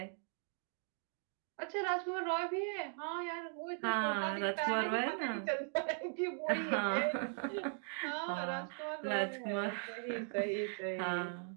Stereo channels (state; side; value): silent; left; 52 dB below the other